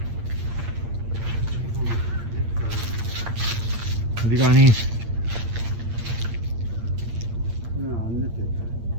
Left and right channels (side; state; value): left; late; 8.7 ms